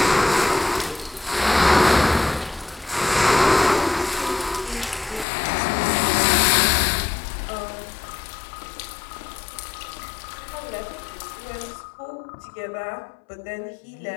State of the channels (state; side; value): drops out; right; at 5.2 s